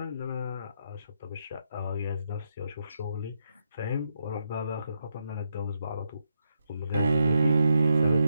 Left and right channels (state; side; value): inverted; both; correlation -0.81